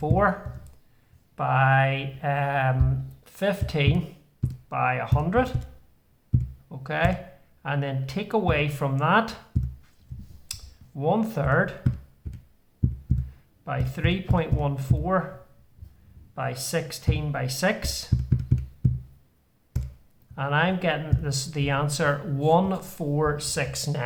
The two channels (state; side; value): identical; both; correlation 1.00